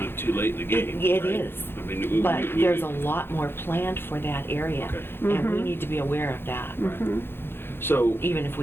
of too late in the game. It right? is. I mean, But there's a lot more planned for that area, Okay. and we need to be aware of that, So, even if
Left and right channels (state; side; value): late; right; 0.11 ms